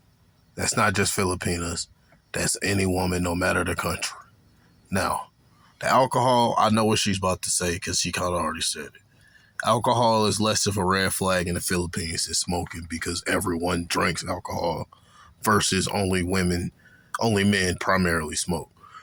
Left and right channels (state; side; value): identical; both; correlation 1.00